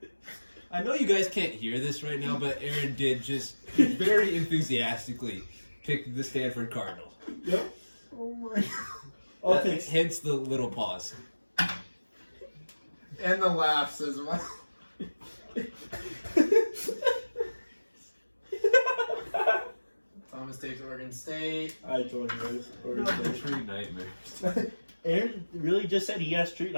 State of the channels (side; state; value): both; inverted; correlation -1.00